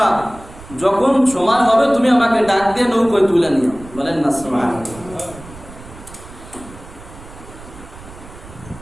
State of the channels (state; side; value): noise; right; rumble, 18 dB below the sound